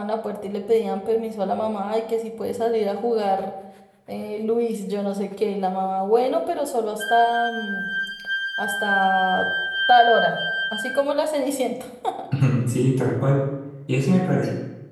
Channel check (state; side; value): identical; both; correlation 1.00